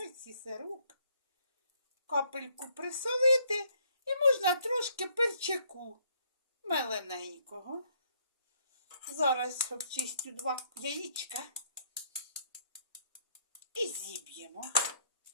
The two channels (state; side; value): inverted; both; correlation -0.67